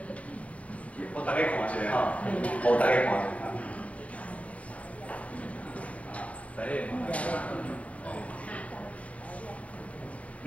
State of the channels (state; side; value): late; right; 0.065 ms